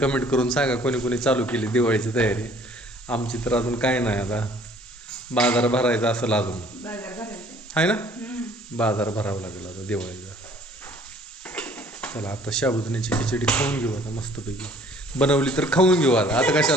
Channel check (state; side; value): normal; both; correlation 0.56